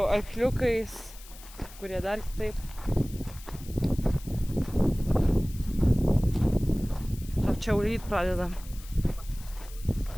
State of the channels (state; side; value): noise; left; hiss, 19 dB below the sound